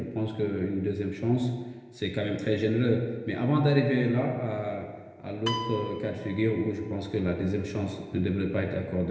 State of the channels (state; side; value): identical; both; correlation 1.00